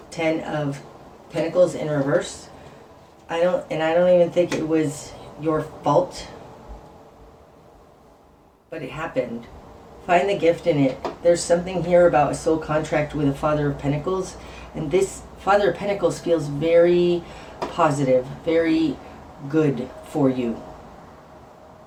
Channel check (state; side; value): identical; both; correlation 1.00